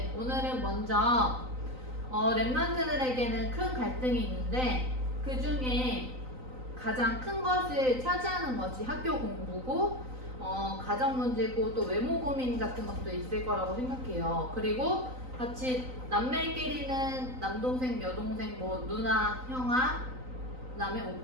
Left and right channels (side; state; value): left; late; 3.9 ms